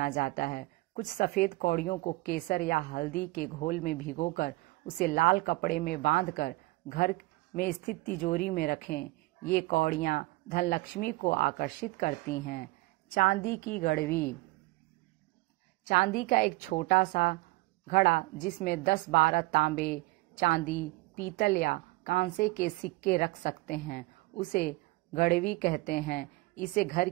जाता है। कुछ सफेद कौड़ियों को केसर या हल्दी के घोल में भिगोकर उसे लाल कपड़े में बांधकर घर में स्थित तिजोरी में रखें। ये कौड़ियाँ धन लक्ष्मी को आकर्षित करती हैं। चांदी की गड़वी। चांदी का एक छोटा सा घड़ा जिसमें 10-12 तांबे, चांदी, पीतल या कांसे के सिक्के रख सकते हैं, उसे गड़वी कहते हैं। इसे घर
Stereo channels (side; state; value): left; quieter; 21.8 dB